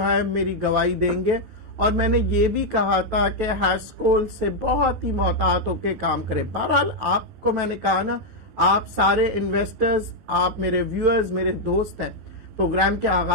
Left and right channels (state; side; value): late; left; 12 ms